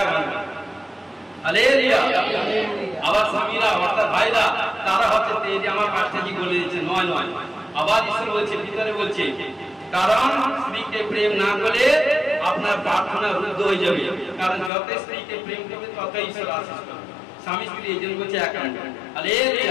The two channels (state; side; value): drops out; right; at 14.7 s